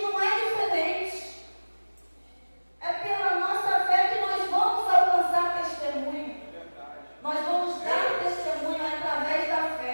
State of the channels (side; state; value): both; inverted; correlation -1.00